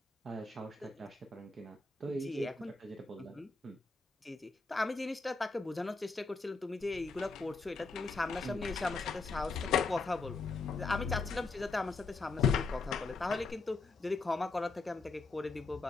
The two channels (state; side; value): quieter; right; 3.9 dB